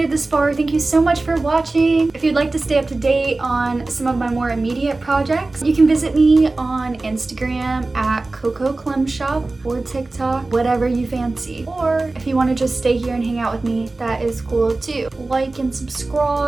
it this far, thank you so much for watching. If you'd like to stay up to date on some of my more immediate projects, you can visit me on Instagram at Coco Clem Shop or TikTok, whatever you fancy. Or if you want to just stay here and hang out with me, that is cool too. Like and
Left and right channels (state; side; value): quieter; left; 3.2 dB